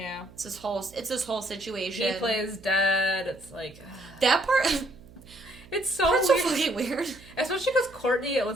It's this whole situation. He plays dead. It's like... That part... It's so That's weird. so fucking weird. Especially because Courtney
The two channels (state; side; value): noise; right; hum, 22 dB below the sound